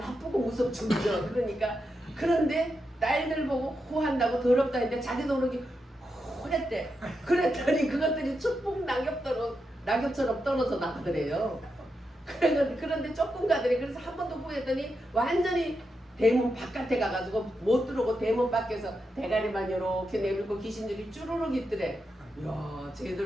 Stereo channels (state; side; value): normal; both; correlation 0.86